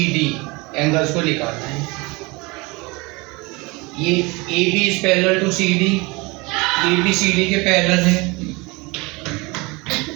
एंगल्स को निकालना है। ये AB is parallel to CD, ABCD के पैरेलल है।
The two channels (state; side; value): quieter; left; 25.5 dB